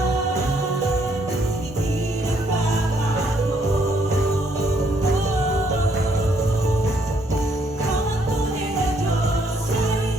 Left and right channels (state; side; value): normal; both; correlation 0.70